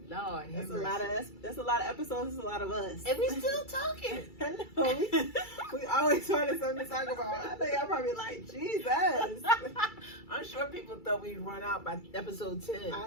Lord, that's a lot of episodes. That's a lot of us. And we still talking. I know. We always find something to talk about. I think y'all probably like, Jesus. I'm sure people thought we'd run out by episode 10.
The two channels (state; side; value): late; right; 2.3 ms